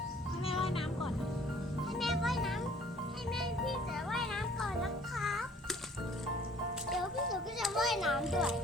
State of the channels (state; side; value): normal; both; correlation 0.55